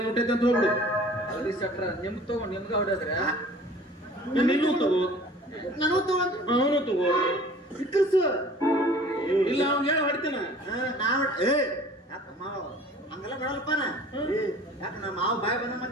ಮುಟ್ಟೈತೆ ಅಂತ ಹೋಗ್ಬಿಡು. ಅಲ್ರಿ ಶೆಟ್ರ ನಿಮ್ಗೆ ತಗೊಂಡು ನಿಮ್ಗೆ ಹೊಡೆದ್ರೆ ನೀನು ತಗೋ, ನಾನು ತಗೊಂಡು ಅವನು ತಗೋ. ಸಿಕ್ಕಲ್ಸು ಇಲ್ಲ ಅವ್ನು ಹೇಳ ಹೊಡಿತೇನ. ನಾವು ಹಂಗೆಲ್ಲ ಬಿಡಲ್ಲಪ್ಪ ನಾ. ಯಾಕೆ ನಮ್ಮ ಮಾವು ಬಾಯಿ ಬಂದ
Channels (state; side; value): normal; both; correlation 0.47